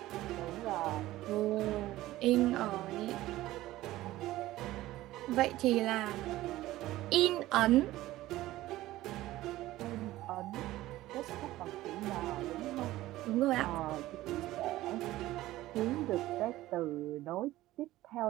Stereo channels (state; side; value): quieter; left; 16.2 dB